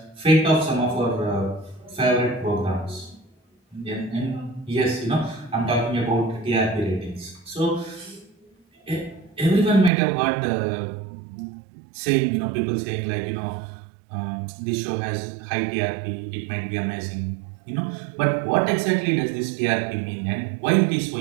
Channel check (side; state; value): left; drops out; at 9.9 s